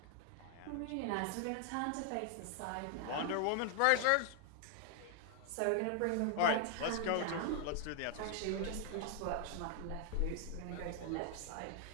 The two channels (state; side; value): different; both; correlation 0.00